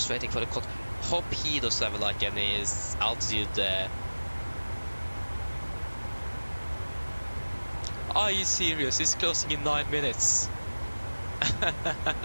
waiting for the code. Hope he doesn't have like any altitude. Are you serious? It's closing in 9 minutes.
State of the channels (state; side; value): inverted; both; correlation -1.00